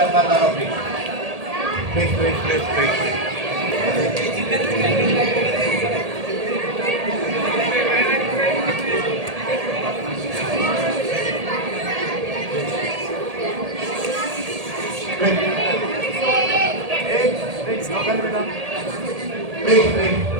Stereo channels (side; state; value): left; late; 1.8 ms